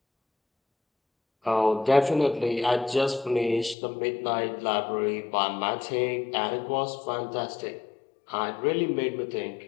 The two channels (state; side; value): drops out; right; at 3.8 s